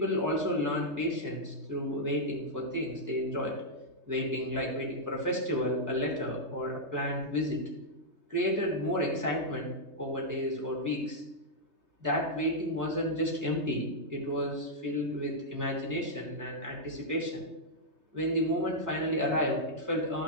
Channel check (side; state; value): left; late; 3.3 ms